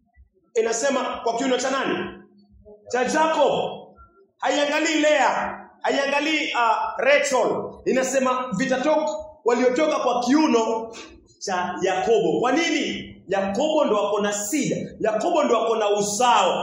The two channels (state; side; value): identical; both; correlation 1.00